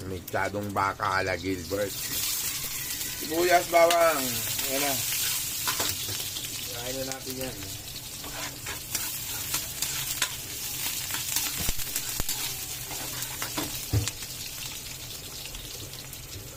mixadong baka ala Gilbert. Sibuyas, bawang. Yan na. Kain na natin yan.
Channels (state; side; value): identical; both; correlation 1.00